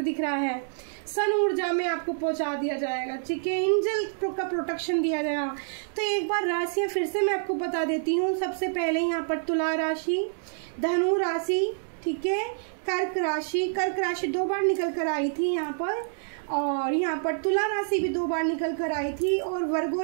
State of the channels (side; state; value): left; silent; digital silence